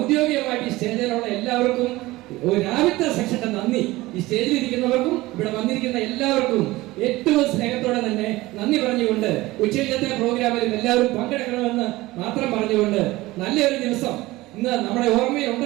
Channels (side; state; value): left; quieter; 19.1 dB